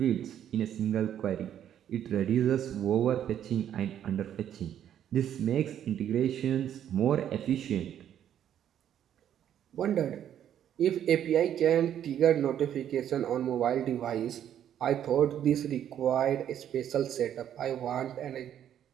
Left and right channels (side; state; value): left; quieter; 10.2 dB